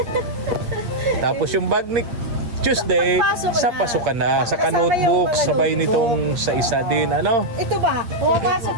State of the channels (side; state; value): left; late; 8.7 ms